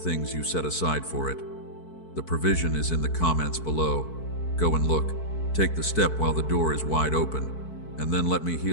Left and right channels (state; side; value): late; right; 4.6 ms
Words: you set aside for it. The provision is in the comments below. Go and look. Take the step while the door is wide open, and then let me